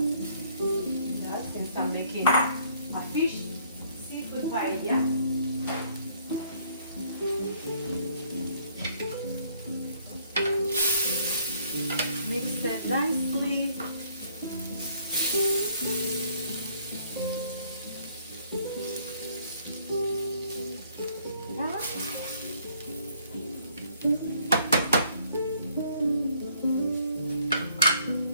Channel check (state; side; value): inverted; both; correlation -0.64